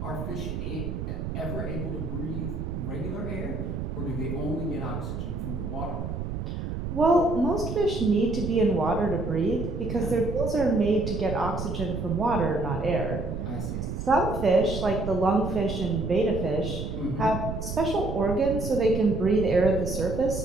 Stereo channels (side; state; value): right; noise; rumble, 5 dB below the sound